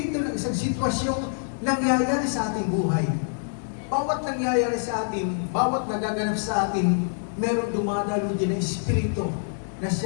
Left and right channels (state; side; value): silent; right; 61 dB below the other